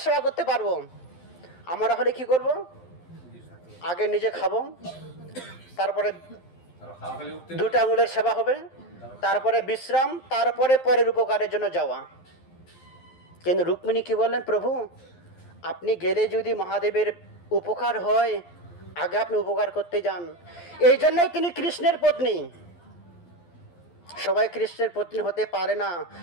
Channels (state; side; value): late; right; 12 ms